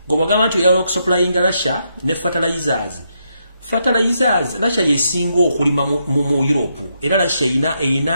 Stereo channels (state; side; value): inverted; both; correlation -0.80